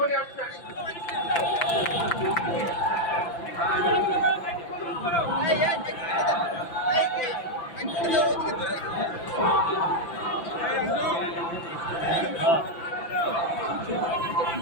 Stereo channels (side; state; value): right; late; 5.9 ms